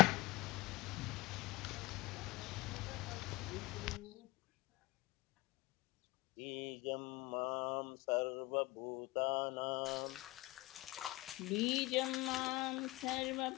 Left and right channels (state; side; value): quieter; right; 21.0 dB